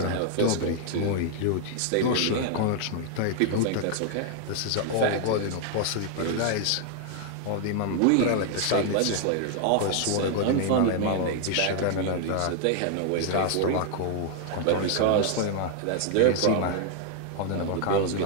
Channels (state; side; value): different; both; correlation 0.00